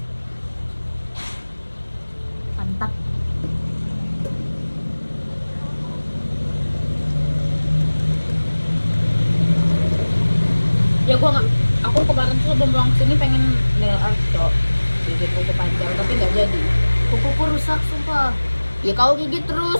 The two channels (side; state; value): both; inverted; correlation -1.00